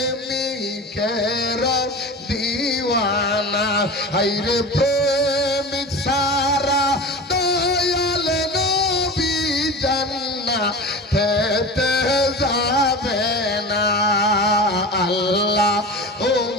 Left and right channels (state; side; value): normal; both; correlation 0.31